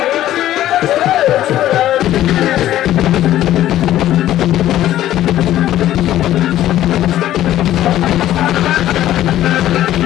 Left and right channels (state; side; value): quieter; right; 13.2 dB